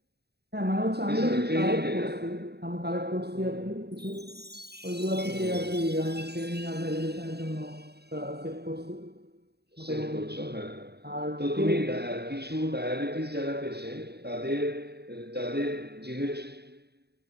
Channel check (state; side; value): late; left; 0.48 ms